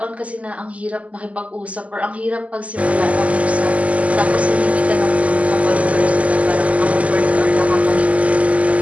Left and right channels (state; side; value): late; left; 0.068 ms